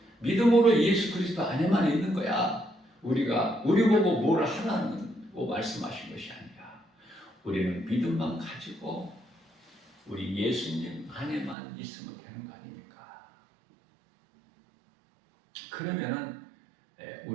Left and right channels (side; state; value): left; drops out; at 11.6 s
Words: 믿음으로 예수 그리스도 안에만 있는 거야. 우리 보고 뭘 하라고 말씀하신 것이 아니라 우리는 믿음만 가지고 우리 예수님 안에만 있으면 되는 거 아닙니까? 그러면은